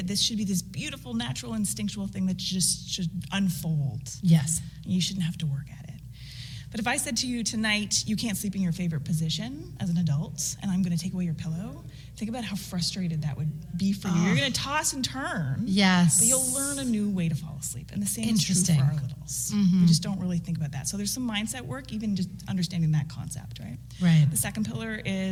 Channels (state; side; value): identical; both; correlation 1.00